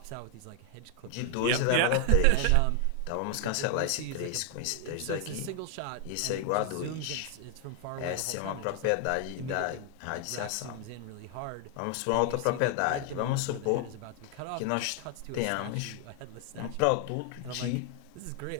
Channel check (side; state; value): both; different; correlation 0.00